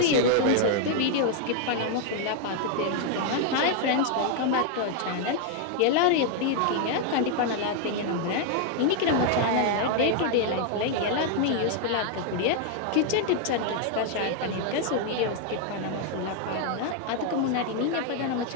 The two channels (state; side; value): different; both; correlation 0.00